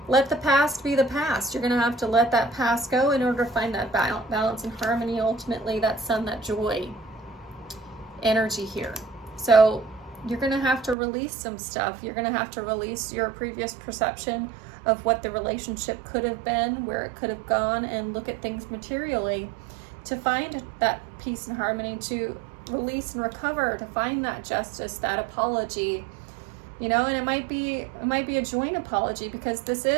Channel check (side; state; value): left; drops out; at 11.0 s